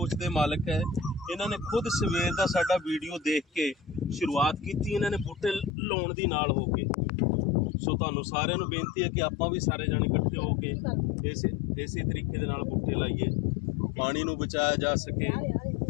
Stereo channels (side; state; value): right; drops out; at 5.8 s